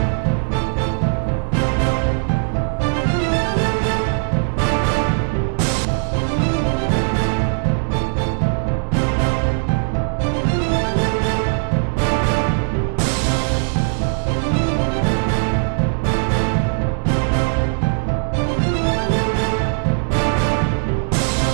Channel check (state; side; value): silent; left; 61 dB below the other